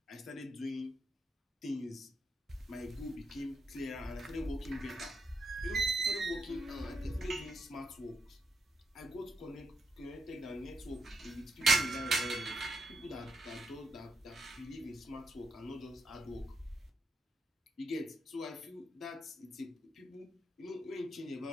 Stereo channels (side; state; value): both; normal; correlation 0.80